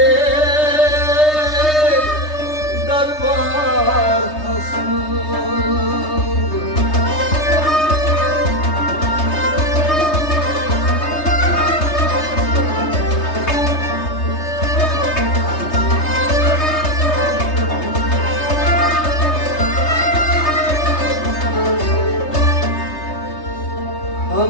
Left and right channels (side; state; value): right; late; 3.3 ms